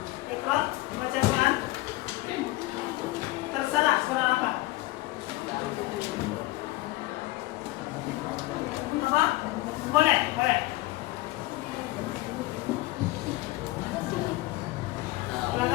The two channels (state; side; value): quieter; right; 19.8 dB